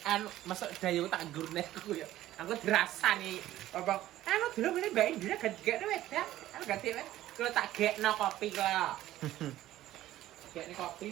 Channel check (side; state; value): left; quieter; 14.3 dB